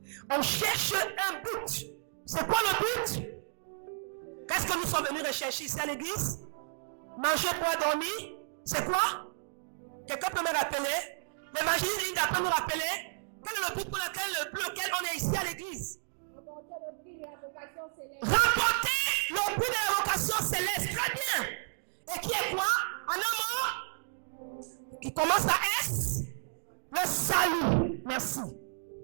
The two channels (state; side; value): silent; left; digital silence